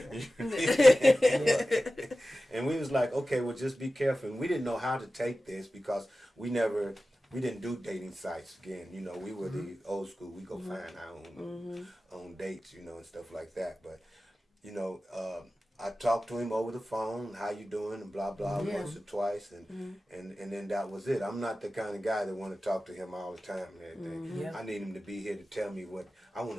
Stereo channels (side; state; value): both; normal; correlation 0.95